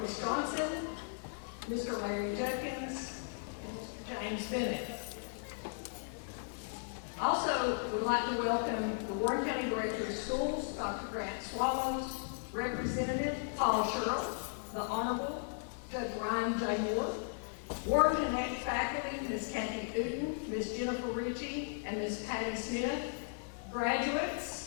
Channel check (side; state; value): right; silent; digital silence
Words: Johnson, Mr. Larry Judkins, and Mr. James Bennett. Also, we'd like to welcome the Warren County Director of Schools, Dr. Grant Swallows, Representative Paul Sherrill, the Honorable Judge Ryan J. Moore, Warren Connect faculty, Ms. Kathy Uten, Ms. Jennifer Ritchie, and Ms. Patty Smith,